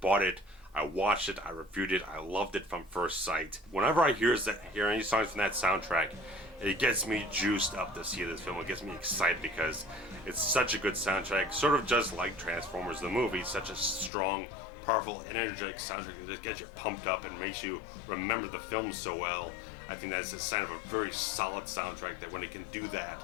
bought it, I watched it, I reviewed it, I loved it from first sight. Whenever I hear any songs from that soundtrack, it gets me juiced up to see this film. It gets me excited because it's such a good soundtrack, sort of just like Transformers the movie, such a strong, powerful, energetic soundtrack that just gets you pumped up and makes you remember the film so well. I think that's a sign of a very solid soundtrack, that when it can do that,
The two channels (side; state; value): right; drops out; at 14.1 s